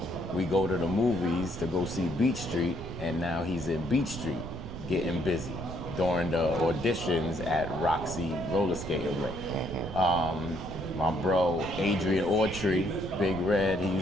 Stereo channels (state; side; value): noise; right; rumble, 9 dB below the sound